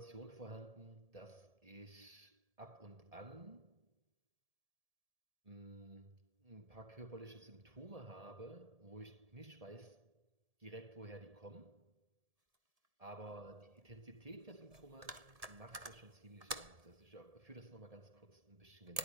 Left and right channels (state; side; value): late; left; 1.7 ms